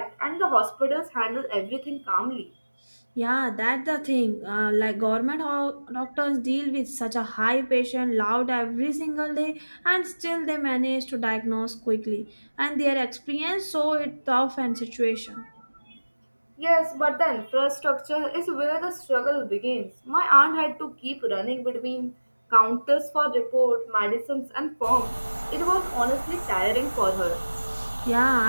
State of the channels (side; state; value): both; inverted; correlation -1.00